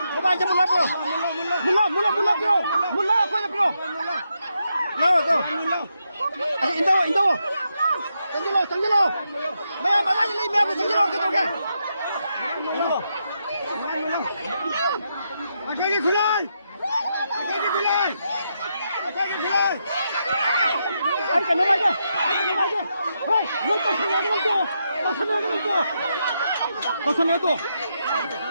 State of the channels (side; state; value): both; inverted; correlation -0.82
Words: lớp quay lớp rồi. Nào rồi. Indo. Tanggi lo. Mày mà lại lấy mẹ của tanggi lo cái đâu kìa. Akhirnya khulai. Ay, que no vaya. Ay, no pasa nada.